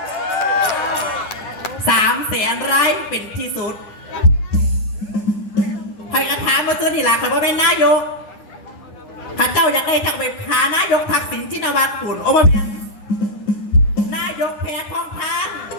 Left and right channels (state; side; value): late; right; 10 ms